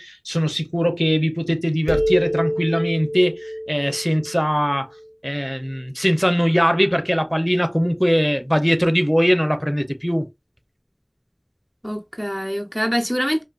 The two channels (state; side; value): identical; both; correlation 1.00